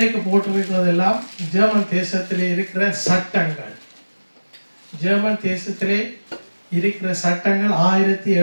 போட்டிருக்கிறதெல்லாம் ஜெர்மன் தேசத்திலே இருக்கிற சட்டங்கள். ஜெர்மன் தேசத்திலே இருக்கிற சட்டங்கள்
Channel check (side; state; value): both; inverted; correlation -1.00